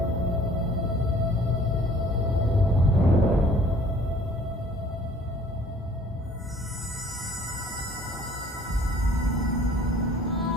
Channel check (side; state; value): both; normal; correlation 0.54